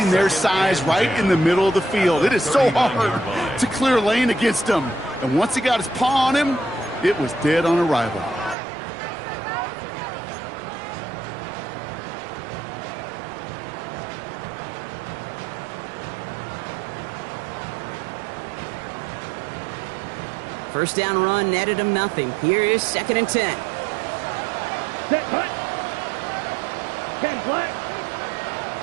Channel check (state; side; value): drops out; left; at 8.6 s